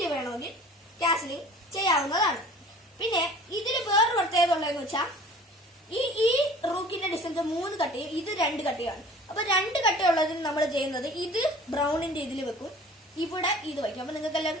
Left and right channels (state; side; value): normal; both; correlation 0.46